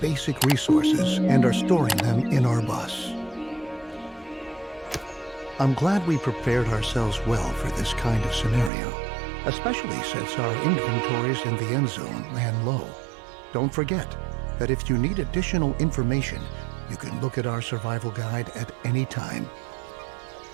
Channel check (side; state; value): left; drops out; at 8.7 s